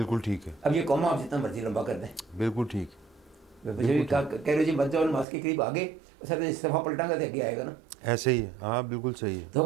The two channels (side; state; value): left; drops out; at 5.2 s